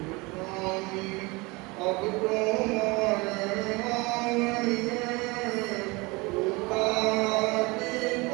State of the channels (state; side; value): quieter; left; 25.0 dB